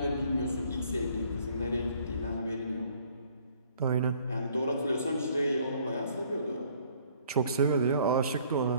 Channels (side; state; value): both; inverted; correlation -0.60